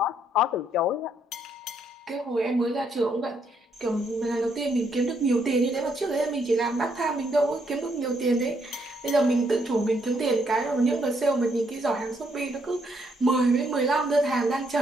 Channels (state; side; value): normal; both; correlation 0.73